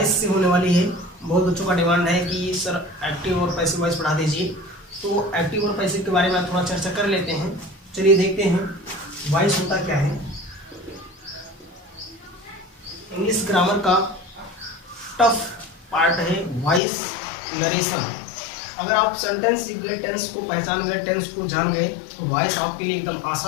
से होने वाली है। बहुत बच्चों का डिमांड है कि सर एक्टिव और पैसिव वॉइस पढ़ा दीजिए, तो एक्टिव और पैसिव के बारे में थोड़ा चर्चा कर लेते हैं। चलिए देखते हैं वॉइस होता क्या है। इंग्लिश ग्रामर का टफ पार्ट है वॉइस नरेशन। अगर आप सेंटेंस सीख गए, टेंस को पहचान गए, टेंस को जान गए, तो वॉइस आपके लिए एकदम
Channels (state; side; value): drops out; right; at 16.8 s